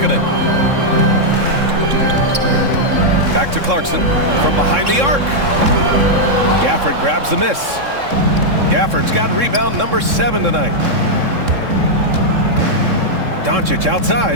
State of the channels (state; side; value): late; left; 3.6 ms